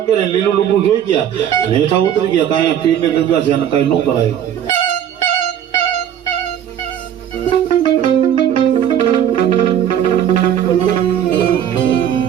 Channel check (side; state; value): left; quieter; 9.9 dB